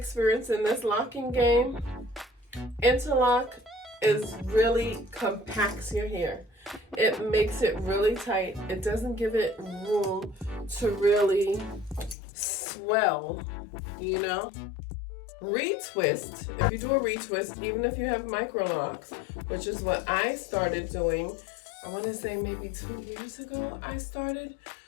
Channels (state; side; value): drops out; right; at 12.2 s